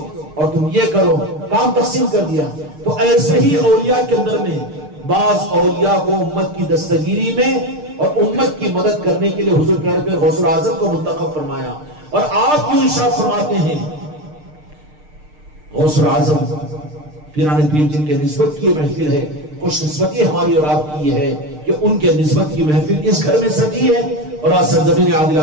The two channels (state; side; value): late; left; 6.6 ms